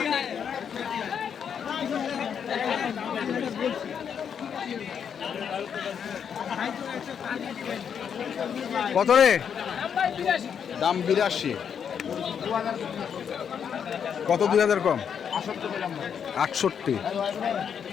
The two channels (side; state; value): right; quieter; 7.6 dB